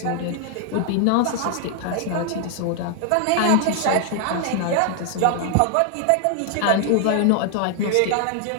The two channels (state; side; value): different; both; correlation 0.00